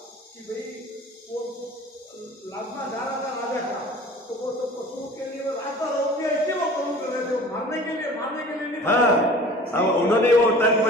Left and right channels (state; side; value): normal; both; correlation 0.44